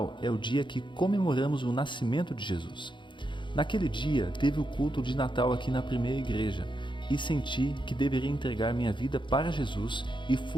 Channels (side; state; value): right; late; 0.23 ms